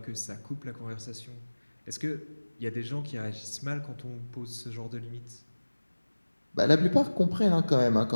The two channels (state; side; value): inverted; both; correlation -1.00